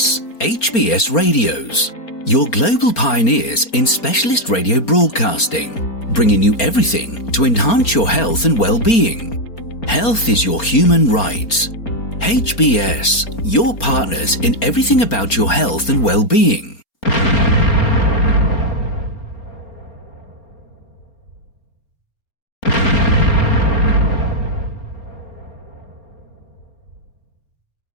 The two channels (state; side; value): late; right; 4.3 ms